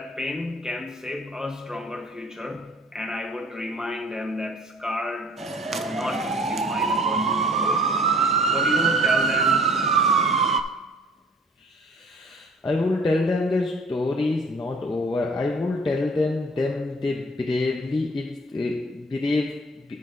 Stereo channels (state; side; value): normal; both; correlation 0.53